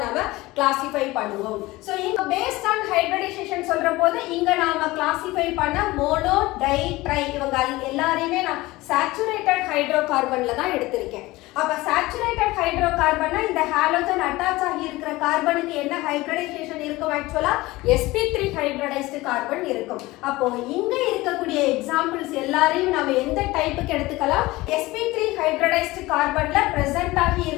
நாம கிளாசிஃபை பண்ணுவோம். சோ இங்க பேஸ்ட் ஆன் ஹைபிரிடைசேஷன் சொல்ற போது இங்க நாம கிளாசிஃபை பண்ண மோனோ டை ட்ரை இவங்க எல்லாரையுமே நான் சேச்சுரேட்டட் ஹைட்ரோகார்பன்ல தான் எடுத்திருக்கேன். அப்ப சேச்சுரேட்டட் ஹைட்ரோகார்பன்னா இந்த ஹாலோஜன் அட்டாச் ஆகி இருக்கிற கார்பனுக்கு என்ன ஹைபிரிடைசேஷன் இருக்கும், ஆக்சுவலா sp3 ஹைபிரிடைஸ்டு கார்பன் இருக்கும். அப்போ இங்க இருக்கக்கூடிய எக்ஸாம்பிள்ஸ் எல்லாரையும் நாம எந்த டைப்புக்கு எடுத்துக்கலாம், sp3 ஹைபிரிடைஸ்டு கார்பன்ல பிரசன்ட் ஆகி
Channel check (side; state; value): right; quieter; 19.8 dB